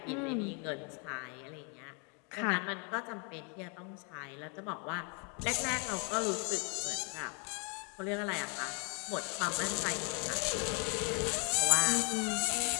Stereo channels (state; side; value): quieter; right; 36.1 dB